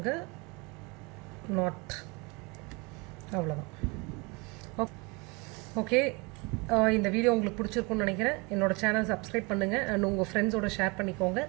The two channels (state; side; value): quieter; left; 28.1 dB